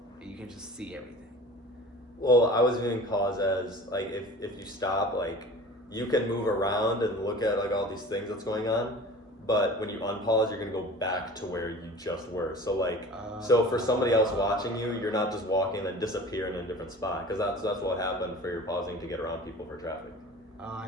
you can just see everything. Well, I was viewing pause as like if you stop, like you can move around and look at like all these things that's going on, but when you unpause, you're gonna go back to where you just were. So like, so for somebody else watching you, you're not just walking and disappear in a different spot, because that's what happened for your pausing to get around people for traffic. Oh, I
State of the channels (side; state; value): both; normal; correlation 0.41